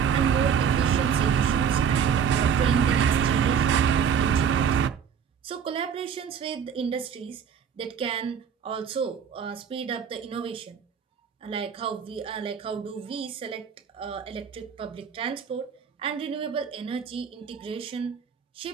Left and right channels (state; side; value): quieter; left; 7.4 dB